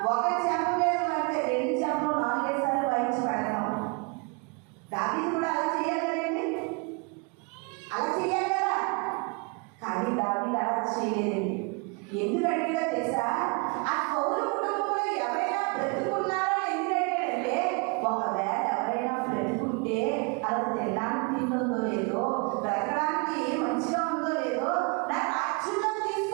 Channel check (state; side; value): quieter; left; 32.5 dB